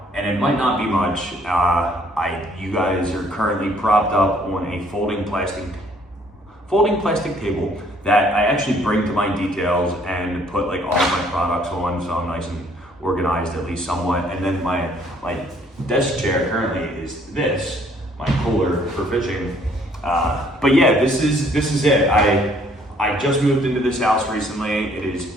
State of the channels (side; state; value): both; normal; correlation 0.62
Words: and it might not be much. You guys are currently propped up on a folding plastic table that I actually bring to my details and put like all of my products on, so I'm nice and organized at least somewhat. And then my desk chair currently is my cooler for fishing. But yeah, this is it. I just moved into this house recently. It is